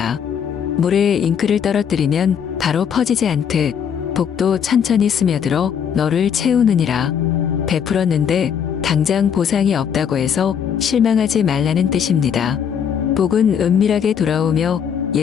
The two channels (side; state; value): right; quieter; 7.8 dB